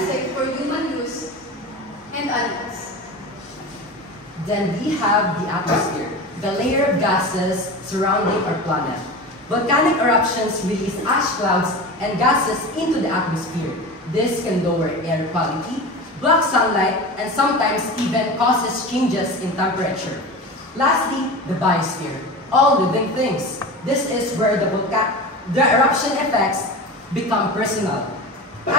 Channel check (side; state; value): both; normal; correlation 0.29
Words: for human use and animals. Then we have the atmosphere, the layer of gases surrounding our planet. Volcanic eruptions release ash clouds and gases into the atmosphere. This can lower air quality, block sunlight, and sometimes even causes changes in temperature. Lastly, the biosphere, all living things. This is where the eruption effects become personal.